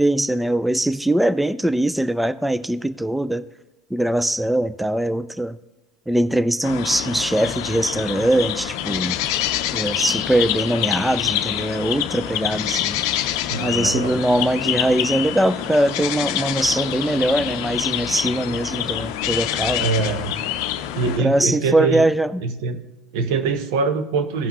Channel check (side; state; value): both; normal; correlation 0.69